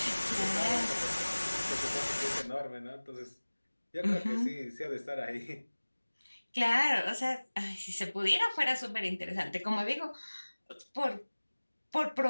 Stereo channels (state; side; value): inverted; both; correlation -1.00